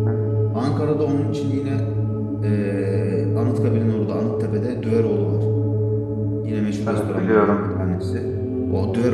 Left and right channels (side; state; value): both; identical; correlation 1.00